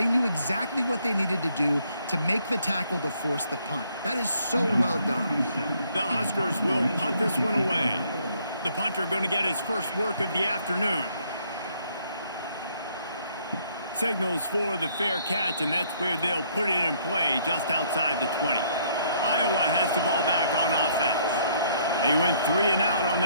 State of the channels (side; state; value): both; inverted; correlation -0.66